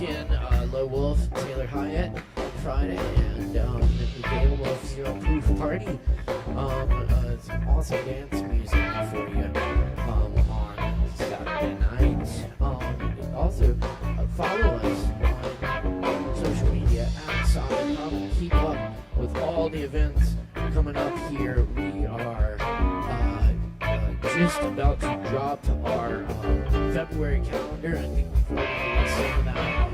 Low Wolf, Taylor Hyatt on Friday, and the Gale Wolf Zero Proof Party. Some awesome dance music for you on Saturday night. Also, follow us on social media at Solid Hub. Keep up with all the events coming up here. We are just about to drop our February calendar. I think we've already released some of that.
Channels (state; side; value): identical; both; correlation 1.00